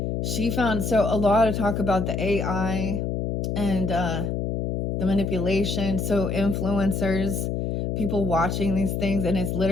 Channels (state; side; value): noise; left; hum, 1 dB below the sound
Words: she found, so a lot of talk about the AI and the manipulation. So influencers, people watching these things, and it's